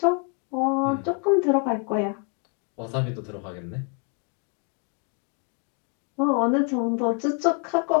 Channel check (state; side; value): quieter; right; 37.0 dB